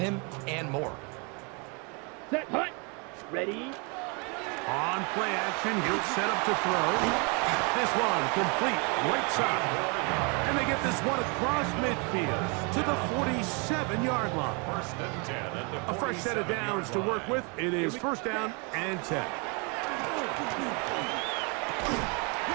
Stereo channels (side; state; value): left; quieter; 33.1 dB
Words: and more. Set. Hut. Ready. On play action, he'll set up to throw. This one complete, right side. And they get this one across midfield to the 47-yard line. First and 10 at the 47-yard line. A fresh set of downs to work with. It is first down and 10.